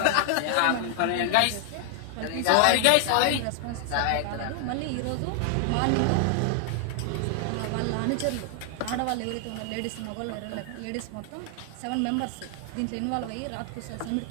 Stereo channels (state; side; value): different; both; correlation 0.00